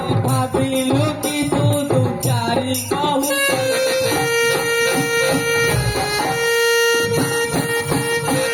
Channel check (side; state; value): both; identical; correlation 1.00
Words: ভাবিলু কি তু দু চারি কহু